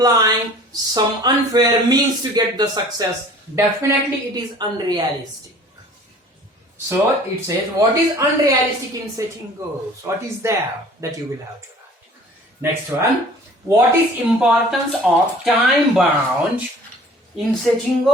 some unfair means to get the success, definitely it is unrealistic. So it says, what is unrealistic in setting goals? What is there that you will have to write? Next one. What is importance of time bound in setting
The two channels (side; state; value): both; normal; correlation 0.48